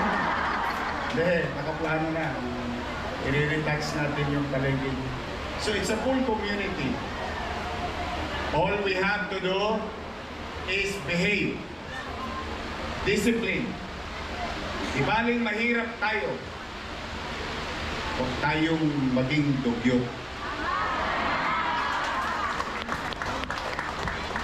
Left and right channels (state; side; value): identical; both; correlation 1.00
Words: Hindi, nakaplano na. I-retouch natin yung palengke. So it's a full community. All we have to do is behave. Discipline. Ibaling mahirap tayo. Huwag tayong maging dugyot.